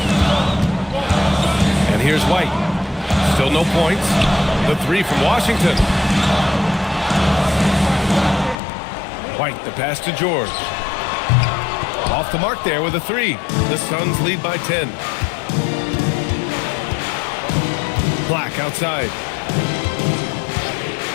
And here's White. Still no points. The 3 from Washington. White, the pass to George. Off the mark there with a 3. The Suns lead by 10. Black outside.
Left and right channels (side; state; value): right; drops out; at 8.6 s